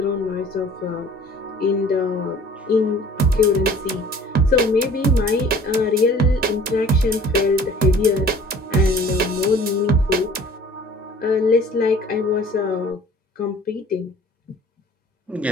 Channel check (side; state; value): both; normal; correlation 0.50